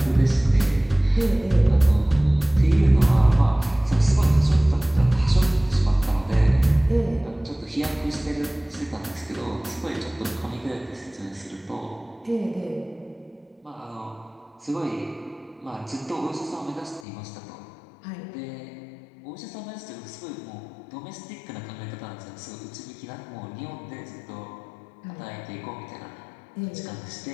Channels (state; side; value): drops out; right; at 17.1 s